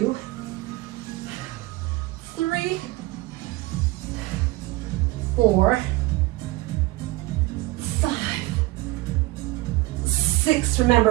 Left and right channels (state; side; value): quieter; left; 19.7 dB